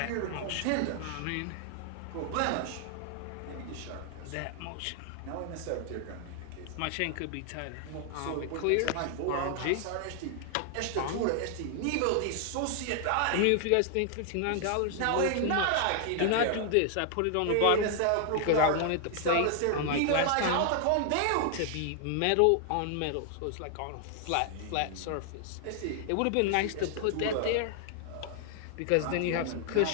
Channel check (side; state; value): both; different; correlation 0.00